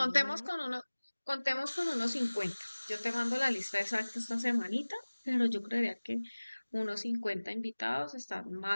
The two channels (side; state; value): both; inverted; correlation -1.00